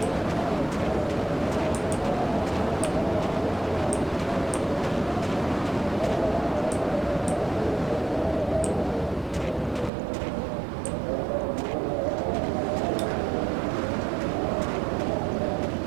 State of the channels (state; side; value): drops out; left; at 9.9 s